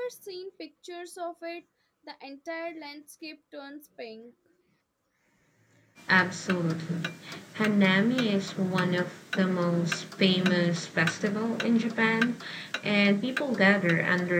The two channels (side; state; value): both; identical; correlation 1.00